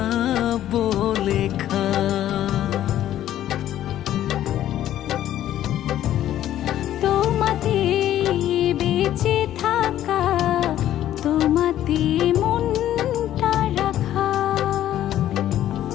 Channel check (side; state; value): right; quieter; 12.3 dB